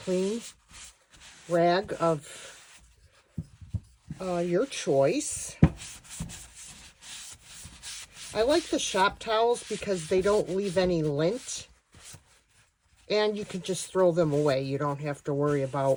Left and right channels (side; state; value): both; identical; correlation 1.00